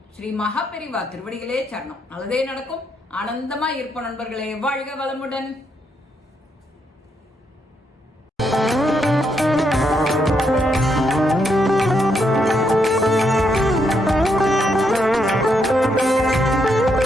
ஸ்ரீ மகாபெரிவா திருவடிகளே சரணம். நல்லதே நடக்கும். ஆனந்தமா இருப்போம் நண்பர்களே. வாழ்க வளமுடன்.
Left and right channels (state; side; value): normal; both; correlation 0.78